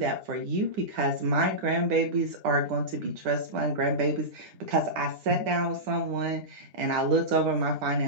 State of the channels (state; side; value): late; left; 9.8 ms